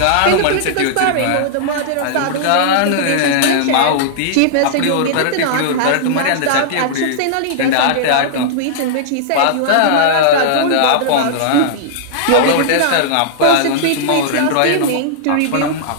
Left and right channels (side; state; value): both; different; correlation -0.02